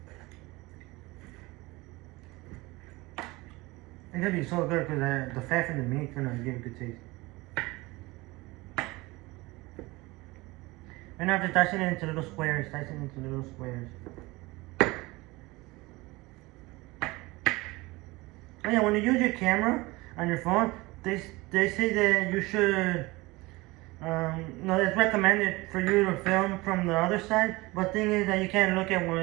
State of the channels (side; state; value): left; quieter; 22.0 dB